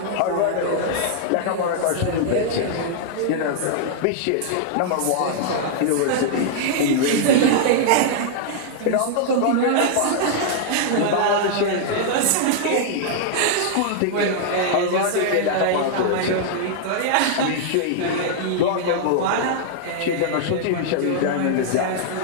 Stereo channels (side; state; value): both; different; correlation -0.01